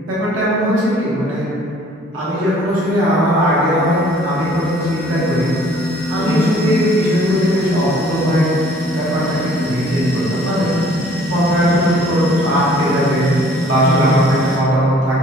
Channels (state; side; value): normal; both; correlation 0.56